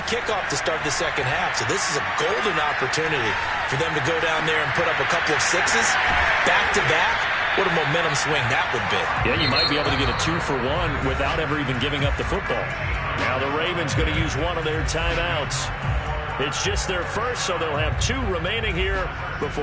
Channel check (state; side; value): identical; both; correlation 1.00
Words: kickoff to start the second half, so this is a golden opportunity for them to go down there and put up a couple of 6s back-to-back. What a momentum swing that would be. Yeah, you might be able to get a 2-for-1 without ever even giving up the football. Now the Ravens going to use one of their timeouts. It's just their first, so they'll have 2 remaining here